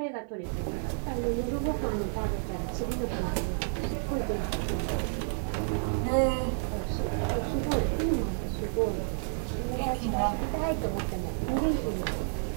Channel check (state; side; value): silent; left; 58 dB below the other